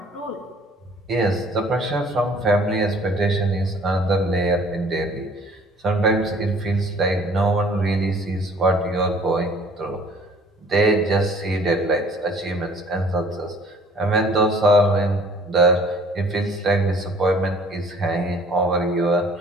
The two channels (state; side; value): normal; both; correlation 0.54